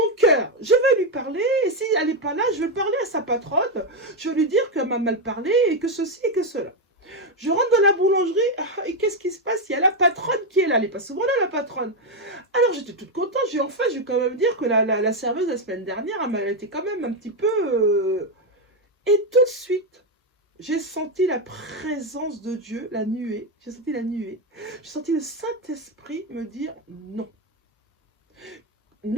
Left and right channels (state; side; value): normal; both; correlation 0.06